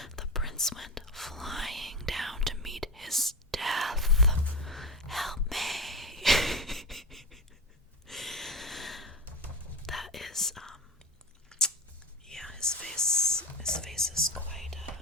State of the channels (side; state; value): both; normal; correlation 0.23